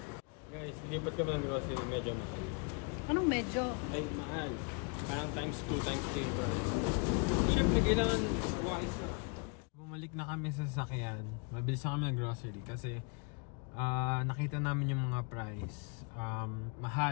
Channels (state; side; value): quieter; right; 35.0 dB